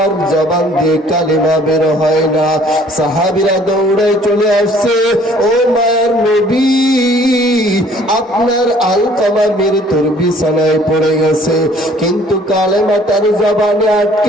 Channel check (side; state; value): both; normal; correlation 0.56